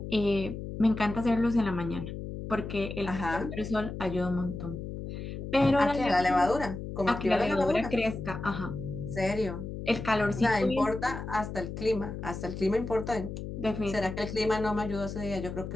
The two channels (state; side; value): noise; left; hum, 7 dB below the sound